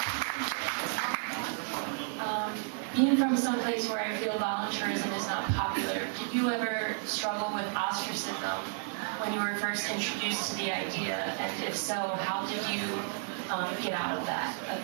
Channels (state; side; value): silent; left; 56 dB below the other